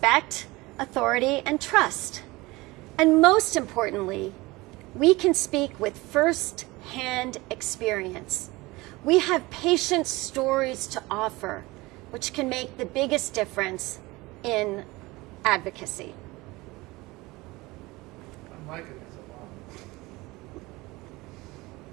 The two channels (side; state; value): left; quieter; 21.6 dB